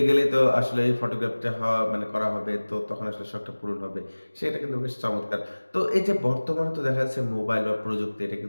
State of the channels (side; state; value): both; inverted; correlation -1.00